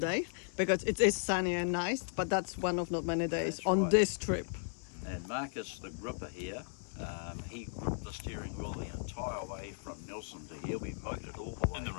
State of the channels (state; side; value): silent; right; 54 dB below the other